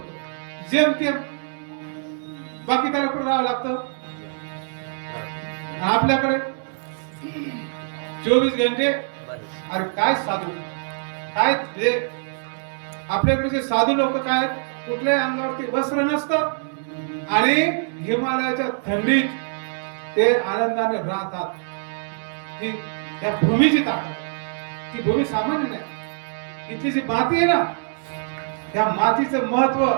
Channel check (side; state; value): left; silent; digital silence